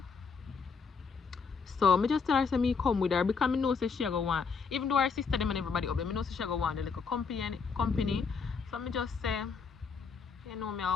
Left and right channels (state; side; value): quieter; right; 5.5 dB